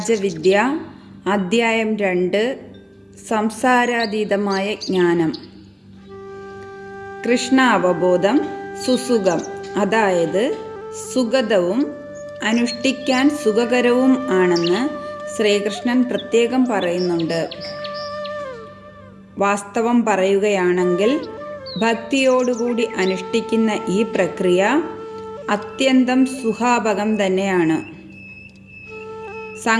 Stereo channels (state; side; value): identical; both; correlation 1.00